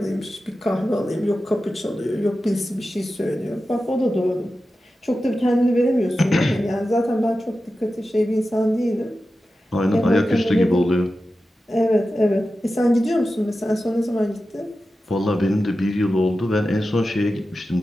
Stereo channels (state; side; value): normal; both; correlation 0.93